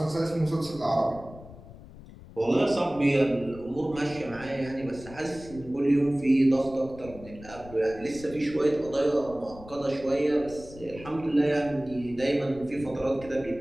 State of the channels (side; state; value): left; noise; rumble, 17 dB below the sound